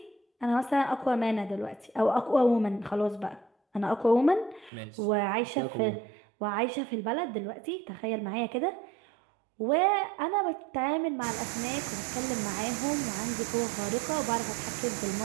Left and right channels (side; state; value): left; drops out; at 4.7 s